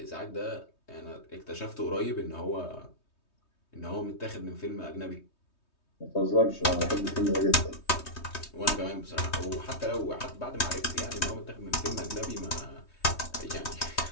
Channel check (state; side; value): late; right; 3.2 ms